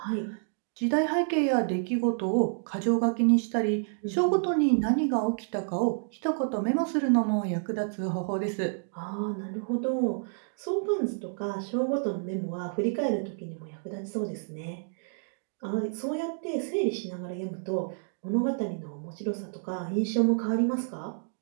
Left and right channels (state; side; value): silent; left; digital silence